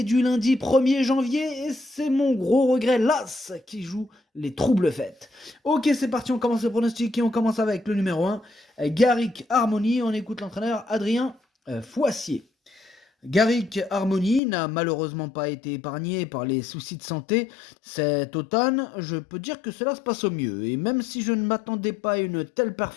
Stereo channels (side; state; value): right; drops out; at 14.4 s